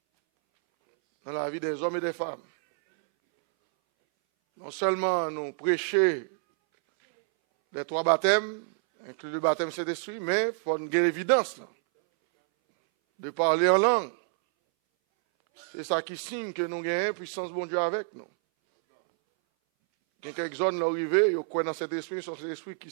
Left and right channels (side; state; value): left; silent; 59 dB below the other